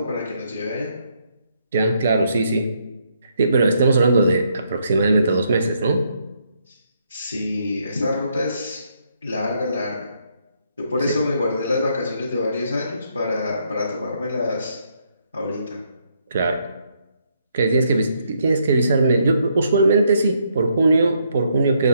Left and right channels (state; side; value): inverted; both; correlation -0.74